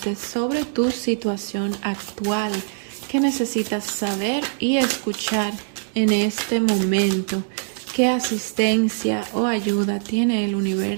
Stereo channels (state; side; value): silent; left; 63 dB below the other